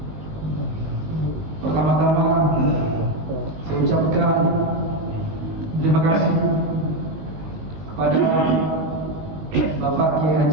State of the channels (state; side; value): late; left; 19 ms